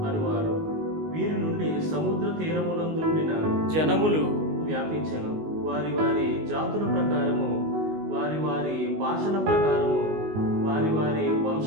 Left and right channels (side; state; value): left; late; 19 ms